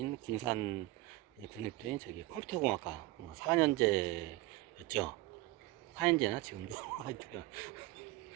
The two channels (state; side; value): quieter; left; 19.2 dB